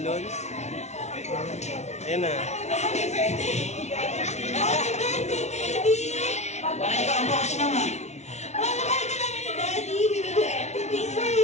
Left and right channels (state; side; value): late; right; 0.32 ms